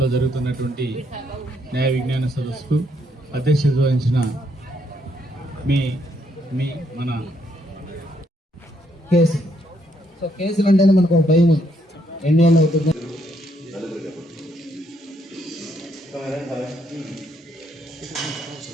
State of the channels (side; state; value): both; normal; correlation 0.73